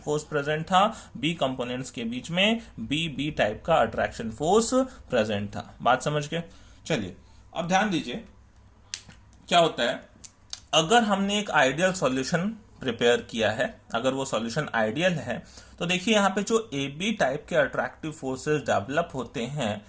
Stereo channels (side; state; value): both; identical; correlation 1.00